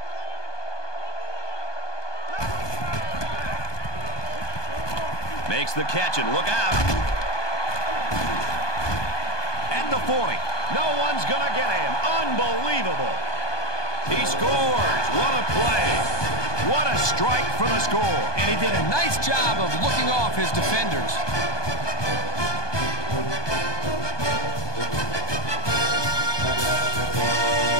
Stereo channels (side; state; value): right; late; 1.2 ms